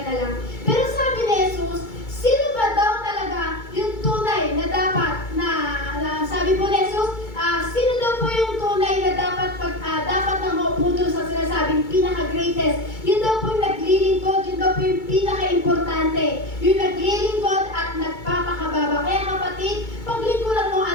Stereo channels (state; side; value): late; right; 2.3 ms